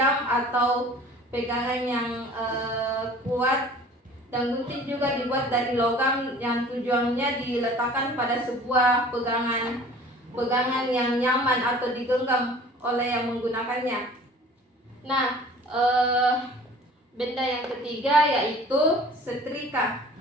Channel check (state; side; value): normal; both; correlation 0.47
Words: atau pegangan yang kuat, dan gunting juga dibuat dari logam yang tujuannya diletakkan pada sebuah pegangan pegangan yang nyaman atau digenggam oleh yang menggunakannya. Nah, benda yang ketiga yaitu setrika.